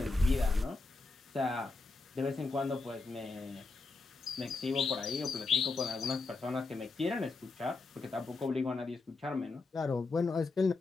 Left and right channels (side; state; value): right; quieter; 3.7 dB